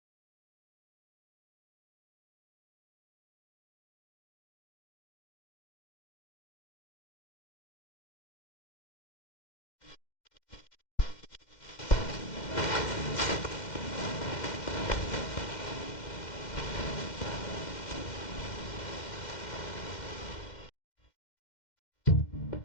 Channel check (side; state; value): right; late; 2.1 ms